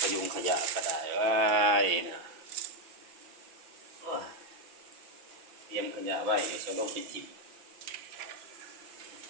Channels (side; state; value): left; late; 5.9 ms